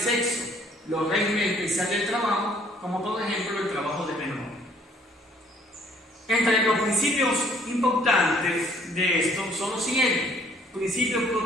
los regímenes especiales del trabajo, como por ejemplo el trabajo de menor. Entre los principios importantes de esto son los siguientes: principio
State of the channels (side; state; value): both; normal; correlation 0.61